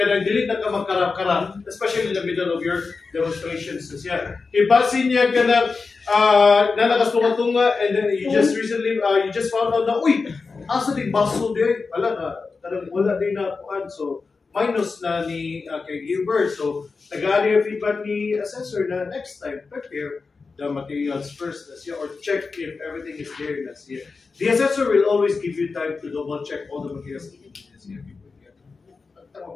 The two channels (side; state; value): right; quieter; 4.4 dB